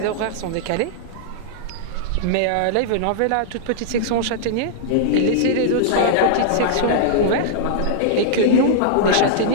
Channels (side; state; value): both; different; correlation -0.02